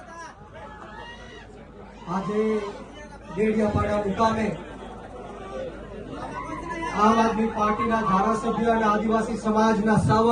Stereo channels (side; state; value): both; identical; correlation 1.00